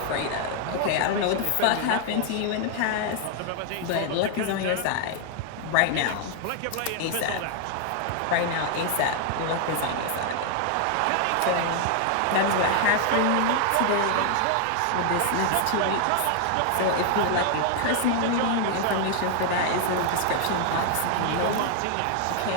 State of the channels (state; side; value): different; both; correlation 0.00